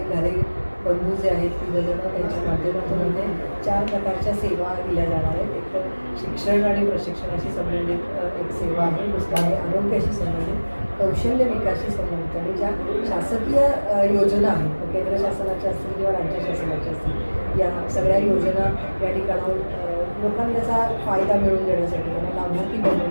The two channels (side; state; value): both; inverted; correlation -1.00